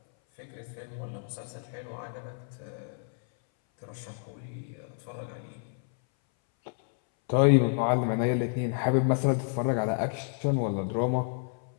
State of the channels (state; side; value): silent; right; 58 dB below the other